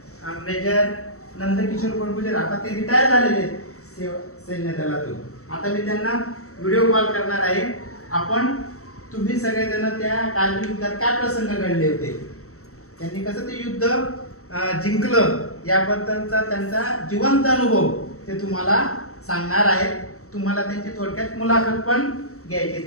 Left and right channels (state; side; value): late; right; 0.64 ms